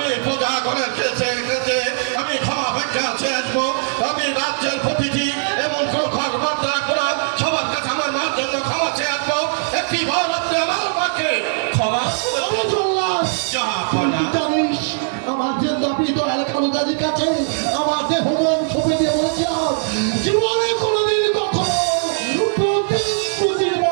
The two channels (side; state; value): left; silent; digital silence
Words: পূজা করে খেতে খেতে আমি ক্ষমা ভিক্ষা চেয়ে আসবো। আমি রাজ্যের প্রতিটি এমন কোন ঘর বার্তা করা সবার কাছে আমার মার জন্য ক্ষমা চেয়ে আসবো। একটি বার আপনি আমার মাকে ক্ষমা করে ওরে জল্লাদ, জাহাপনা। তুই জানিস আমার যে দাবি দয়াল খানুদাজির কাছে আমার দেহ মন ছবি দিয়ে বলেছিলাম জীবনে কোনোদিন কখনো প্রতিদিন